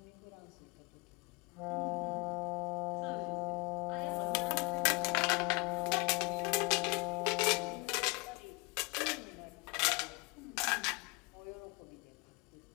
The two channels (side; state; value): right; quieter; 28.2 dB